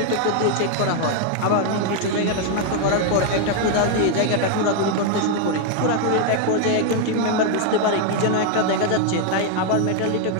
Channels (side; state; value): both; different; correlation 0.00